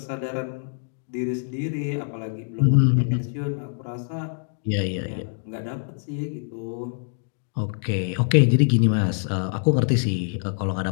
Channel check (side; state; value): right; silent; digital silence